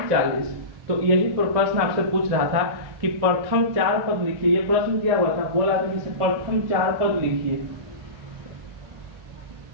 40। तो यही प्रश्न आपसे पूछ रहा था कि प्रथम 4 पद लिखिए। ये प्रश्न दिया हुआ था, बोला था कि प्रथम 4 पद लिखिए,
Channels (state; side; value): late; left; 1.8 ms